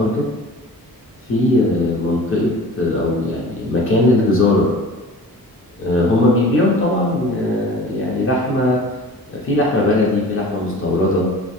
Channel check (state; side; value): normal; both; correlation 0.42